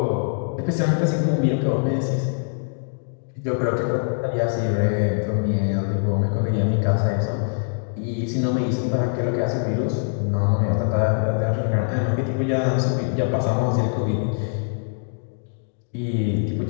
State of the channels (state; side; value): silent; right; digital silence